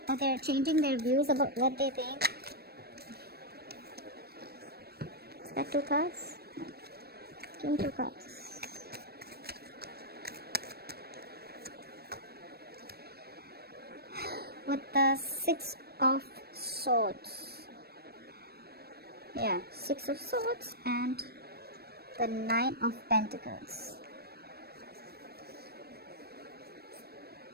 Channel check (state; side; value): late; left; 0.46 ms